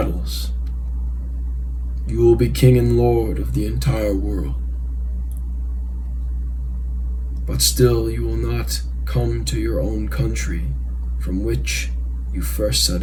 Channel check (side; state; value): both; identical; correlation 1.00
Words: you will be king and lord of the entire world. But still you will not come to your own country from which you first set